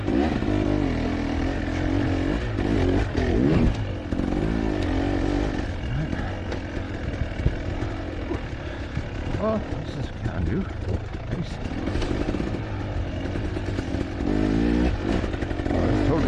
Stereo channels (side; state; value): both; identical; correlation 1.00